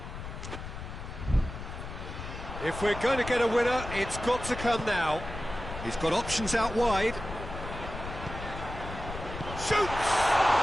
If we're going to get a winner, it's got to come now. He's got options out wide. Shoots!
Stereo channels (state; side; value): noise; left; rumble, 9 dB below the sound